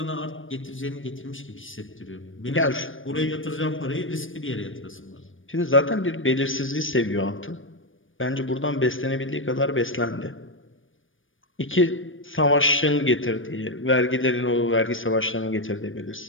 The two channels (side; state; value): right; late; 0.57 ms